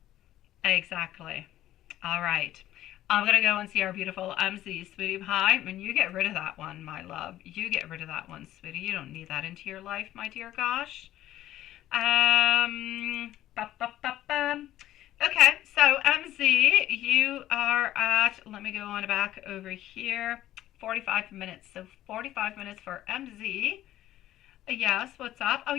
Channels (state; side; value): quieter; right; 13.7 dB